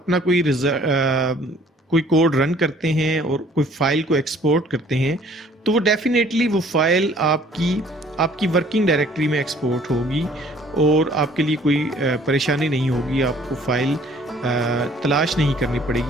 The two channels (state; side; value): normal; both; correlation 0.56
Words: कोई कोड रन करते हैं और कोई फाइल को एक्सपोर्ट करते हैं तो वो डेफिनेटली वो फाइल आपकी वर्किंग डायरेक्टरी में एक्सपोर्ट होगी और आपके लिए कोई परेशानी नहीं होगी। आपको फाइल तलाश नहीं करनी